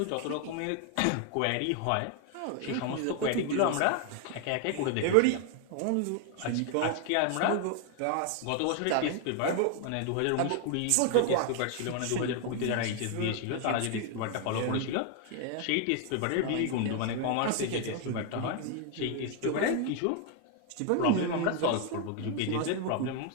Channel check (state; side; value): different; both; correlation 0.00